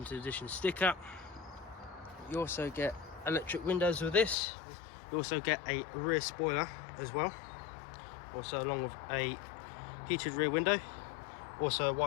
edition sticker. You also get electric windows with this. You also get a rear spoiler as well, also along with a heated rear window, also a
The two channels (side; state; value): right; drops out; at 4.4 s